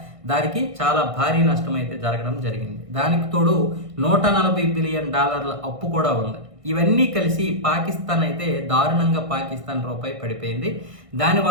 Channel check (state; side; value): late; left; 1.6 ms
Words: దానికి చాలా భారీ నష్టం అయితే జరగడం జరిగింది. దానికి తోడు $140 బిలియన్ అప్పు కూడా ఉంది. ఇవన్నీ కలిసి పాకిస్తాన్ అయితే దారుణంగా పాకిస్తాన్ రూపాయి పడిపోయింది.